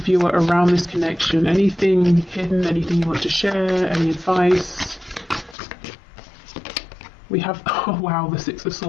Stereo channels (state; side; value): drops out; right; at 5.6 s